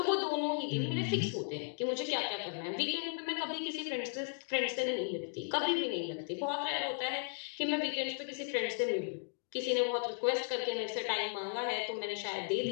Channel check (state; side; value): silent; right; 54 dB below the other